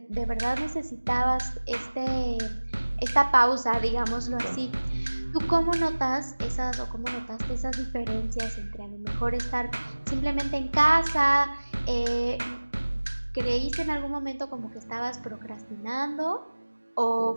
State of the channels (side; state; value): both; inverted; correlation -1.00